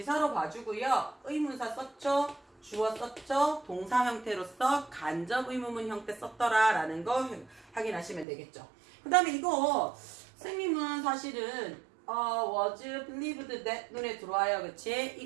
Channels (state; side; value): drops out; left; at 8.2 s